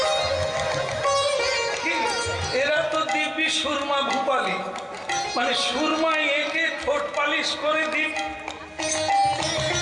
এরা তো দিব্যি সুরমা ভূপালি, মানে সুরমা একে ঠোঁট পালিশ করে দিন।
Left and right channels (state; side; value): identical; both; correlation 1.00